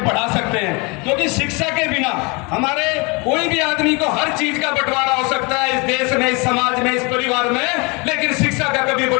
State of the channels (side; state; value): right; quieter; 28.7 dB